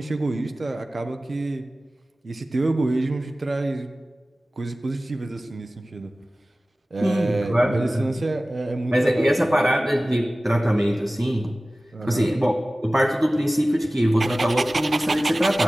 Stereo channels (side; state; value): both; normal; correlation 0.97